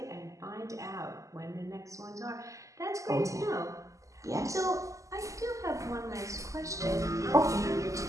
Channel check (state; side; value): late; left; 0.16 ms